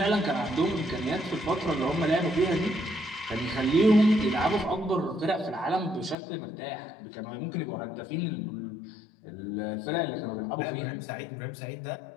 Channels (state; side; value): drops out; right; at 6.2 s